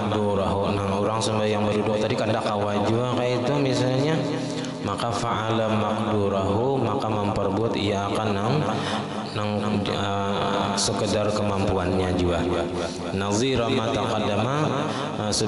nang orang sembahyang berduduk tadi kada kawajua kayak itu misalnya, maka fa'ala maqdurahu, maka memperbuat ia akan nang sekedar kemampuannya juga. Nazira ma taqaddama,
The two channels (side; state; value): both; identical; correlation 1.00